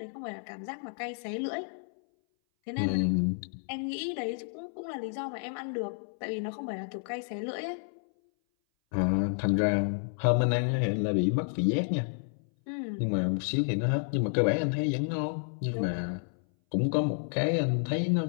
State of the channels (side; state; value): right; silent; 57 dB below the other